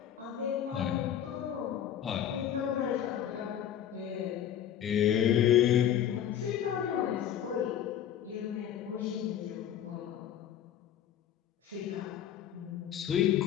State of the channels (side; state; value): right; quieter; 10.1 dB